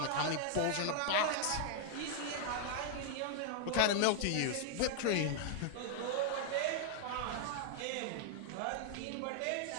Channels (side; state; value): both; different; correlation 0.00